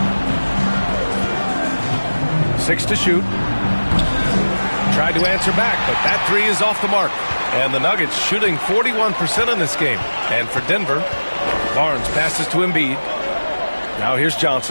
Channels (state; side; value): inverted; both; correlation -1.00